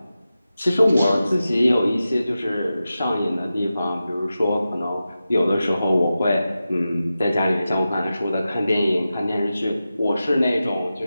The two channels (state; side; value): inverted; both; correlation -0.93